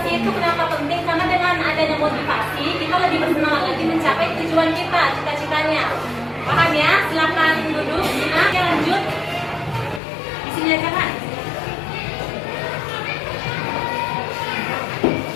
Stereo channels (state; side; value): drops out; right; at 10.0 s